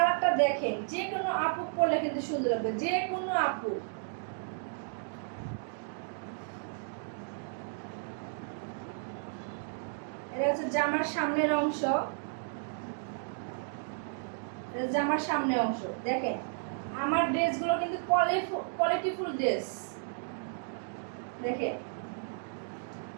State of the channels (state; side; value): silent; left; digital silence